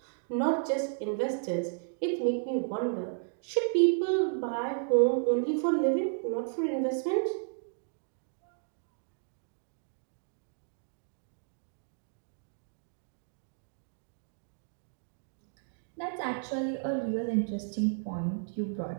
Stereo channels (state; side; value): silent; left; digital silence